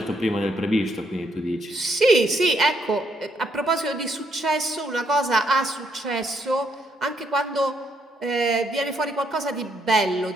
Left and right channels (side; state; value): both; normal; correlation 0.73